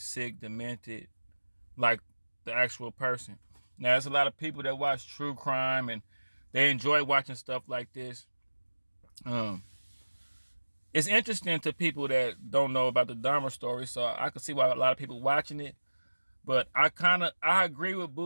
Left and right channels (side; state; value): both; inverted; correlation -1.00